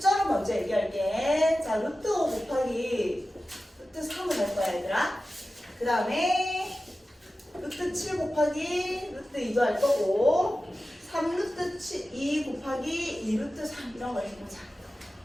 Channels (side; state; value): both; normal; correlation 0.94